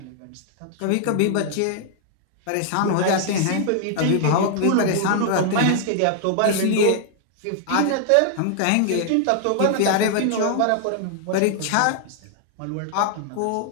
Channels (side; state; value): both; different; correlation 0.00